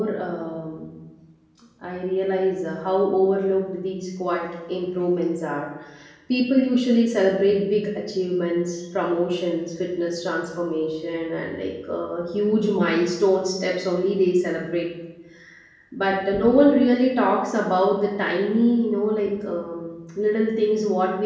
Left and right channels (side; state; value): both; identical; correlation 1.00